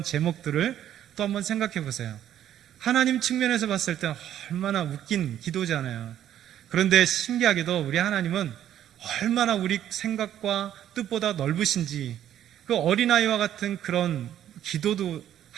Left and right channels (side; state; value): left; quieter; 11.1 dB